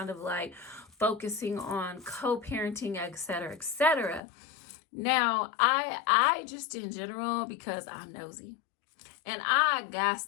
of like focusing on co-parenting, etc., etc. Now, I just in general, because I'm nosy and I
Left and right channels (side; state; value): right; drops out; at 4.2 s